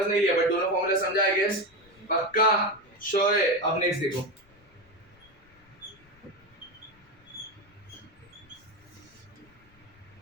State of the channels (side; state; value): left; noise; rumble, 30 dB below the sound